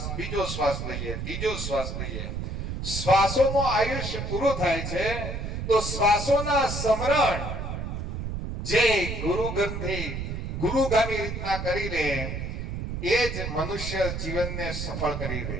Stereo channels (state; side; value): noise; right; rumble, 4 dB below the sound